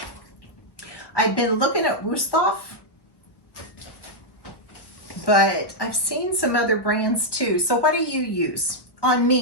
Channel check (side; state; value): right; late; 1.1 ms